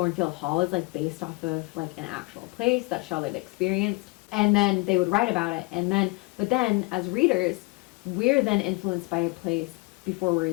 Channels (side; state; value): right; quieter; 27.1 dB